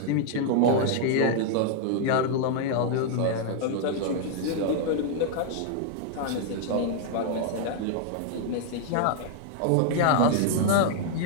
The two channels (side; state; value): both; different; correlation 0.00